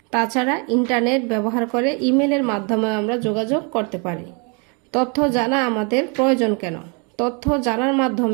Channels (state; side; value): quieter; left; 34.3 dB